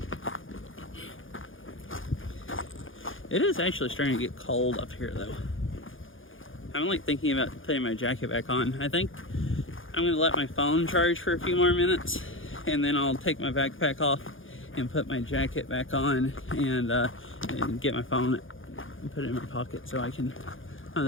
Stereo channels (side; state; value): right; late; 0.58 ms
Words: It is actually starting to get cold up here though. I'm like thinking about putting my jacket back on. I think I'm gonna let my phone charge for a few more minutes and then I'll take my backpack off and put my jacket back on and get my phone and put it in my pocket so I can, oh,